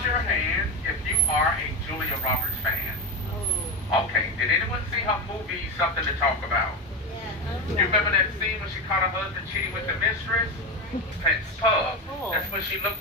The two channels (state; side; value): normal; both; correlation 0.16